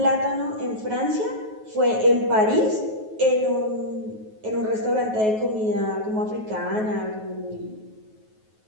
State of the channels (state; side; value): late; left; 9.3 ms